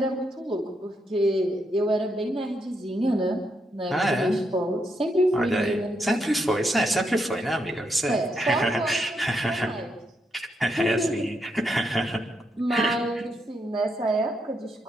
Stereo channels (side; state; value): both; normal; correlation 0.80